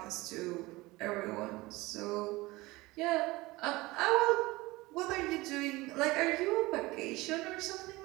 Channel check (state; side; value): quieter; left; 20.9 dB